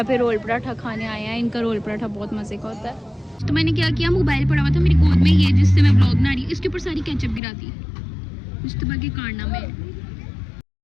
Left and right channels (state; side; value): drops out; right; at 7.4 s